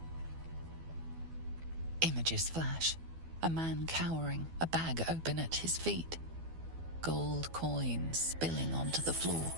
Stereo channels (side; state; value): left; late; 12 ms